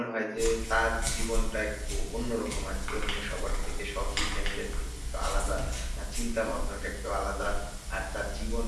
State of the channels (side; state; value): both; identical; correlation 1.00